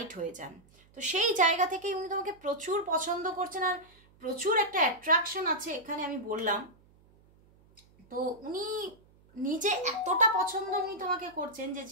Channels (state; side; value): noise; right; hum, 29 dB below the sound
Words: হয়ে যান। তো সেই জায়গা থেকেই উনি তোমাকে প্রচুর পছন্দ করছেন আর প্রচুর একটা অ্যাট্রাকশন আছে এখানে, আমি বললাম। তো উনি নিজে এতটা পছন্দ উনি তোমাকে করছেন যে